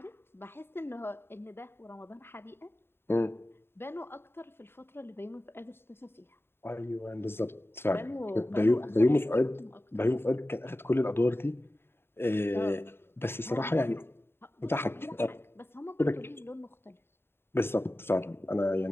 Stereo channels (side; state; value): right; late; 0.11 ms